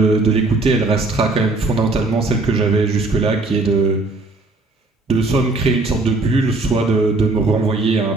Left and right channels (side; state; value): left; quieter; 3.2 dB